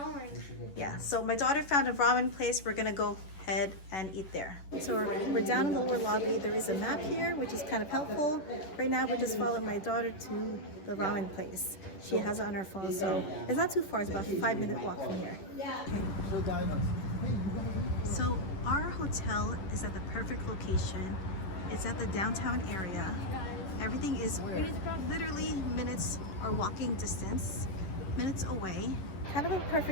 Yeah, so my daughter found a ramen place. We're gonna go ahead and eat there. So we're down in the lower lobby. There is a map here, which is kind of helpful. Right now, we're just following my daughter to the ramen place. She has it on her phone, so it's not too far. It's about a 5-minute walk from here. So our hotel is at the perfect location. It's at the downtown area. Everything is literally minutes or walking distance, minutes away. Kind of a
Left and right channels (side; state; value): right; late; 10 ms